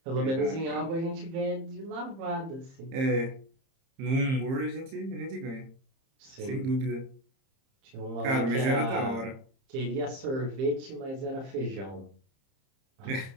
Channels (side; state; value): left; late; 30 ms